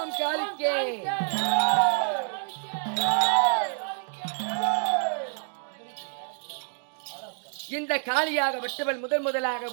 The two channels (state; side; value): silent; left; 58 dB below the other